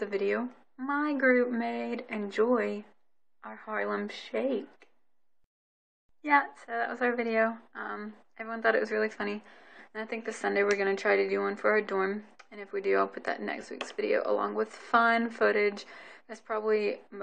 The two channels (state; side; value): identical; both; correlation 1.00